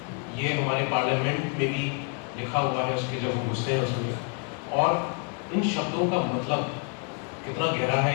ये हमारे पार्लियामेंट में भी लिखा हुआ है, उसके जब हम घुसते हैं उसमें। और इन शब्दों का मतलब कितना गहरा है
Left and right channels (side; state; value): right; quieter; 37.6 dB